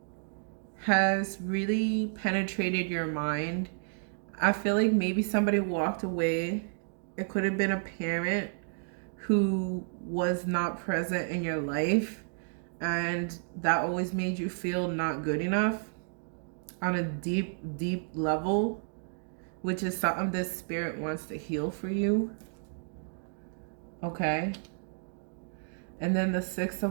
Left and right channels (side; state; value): left; silent; digital silence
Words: has really penetrated your mind. I feel like maybe somebody walked away. It could have been a parent who was not present in your life, and that always made you feel not good enough on a deep, deep level, which is something this spirit wants to heal for you. Okay. And then the Six